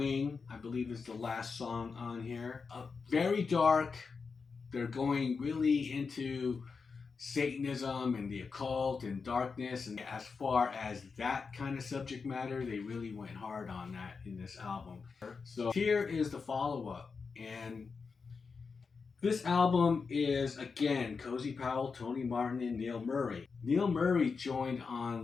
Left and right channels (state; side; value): quieter; right; 5.0 dB